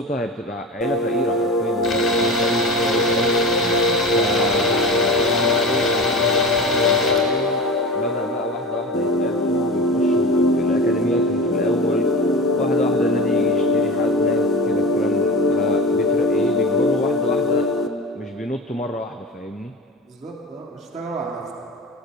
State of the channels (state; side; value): normal; both; correlation 0.30